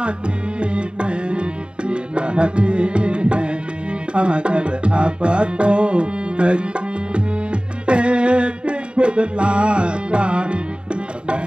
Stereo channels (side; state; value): left; late; 0.053 ms